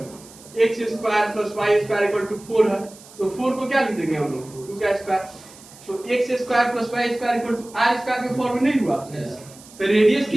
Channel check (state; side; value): noise; right; hiss, 21 dB below the sound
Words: x square plus y square equal to 4 है, तो 4 को क्या लिख देंगे हम लोग, 2 का स्क्वायर, तो x square plus y square equal to r square के फॉर्म में नहीं हुआ, तो रेडियस